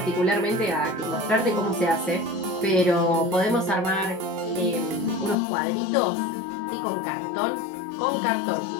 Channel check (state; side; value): drops out; right; at 5.4 s